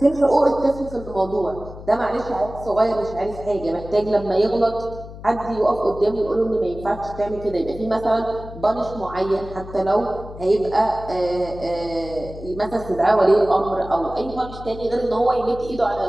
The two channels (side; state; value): left; noise; hum, 14 dB below the sound